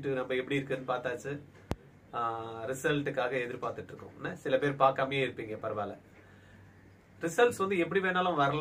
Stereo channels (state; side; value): identical; both; correlation 1.00